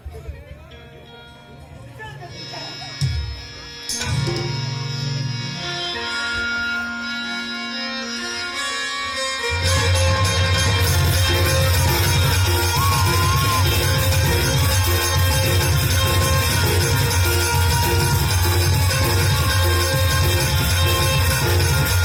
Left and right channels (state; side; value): identical; both; correlation 1.00